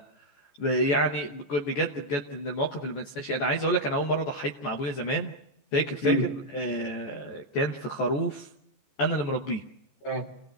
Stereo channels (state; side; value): late; right; 14 ms